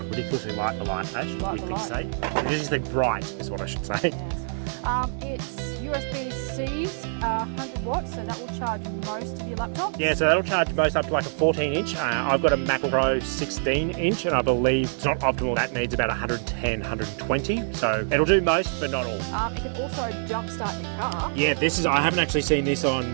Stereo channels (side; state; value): left; silent; digital silence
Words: Ridiculously light, the light, Ash. Light the light. It is the bright, is what I should say. Yes. It's USB-C's 100 watts, so that will charge most of your laptops. Yeah, so that'll charge most up to like a 14-inch. I've got a Mac Pro 16-inch, and I believe it's not optimal. That needs about 110, 120. So it'll do most, but not all. It can also jumpstart your car. Yeah, I haven't actually seen this on